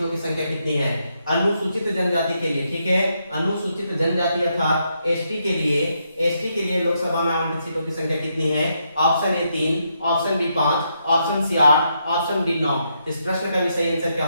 की संख्या कितनी है, अनुसूचित जनजाति के लिए, ठीक है, अनुसूचित जनजाति अर्थात एसटी के लिए लोकसभा में आवंटित सीटों की संख्या कितनी है, option A 3, option B 5, option C 8, option D 9। इस प्रश्न का भी सही आंसर क्या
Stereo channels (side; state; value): both; inverted; correlation -0.79